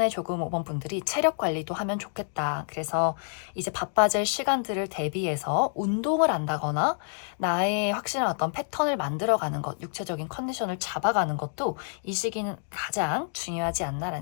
조금 5번 분들이 체력 관리도 하면 좋겠다. 그래서 이제 바빠질 시간들을 대비해서 운동을 한다거나 나의 확실한 어떤 패턴을 만들어가는 것, 육체적인 컨디션을 잡아가는 것도 이 시기는 가장 중요하지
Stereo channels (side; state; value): right; silent; digital silence